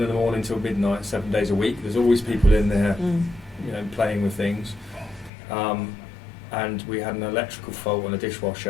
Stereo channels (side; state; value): right; drops out; at 5.3 s